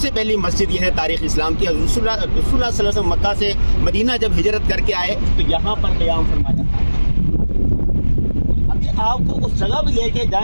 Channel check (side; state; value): both; inverted; correlation -1.00